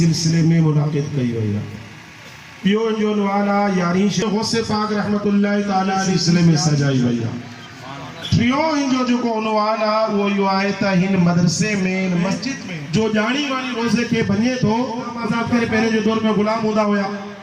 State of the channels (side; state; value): both; identical; correlation 1.00